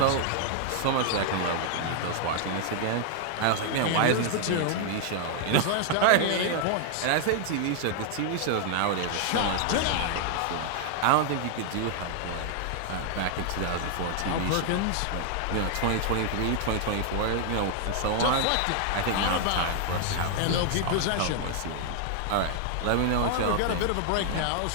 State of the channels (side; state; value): both; different; correlation 0.00